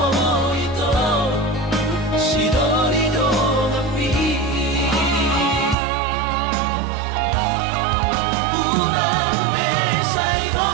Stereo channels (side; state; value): left; drops out; at 5.8 s